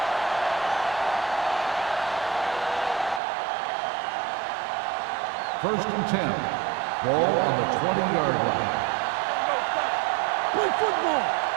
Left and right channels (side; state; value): left; drops out; at 3.2 s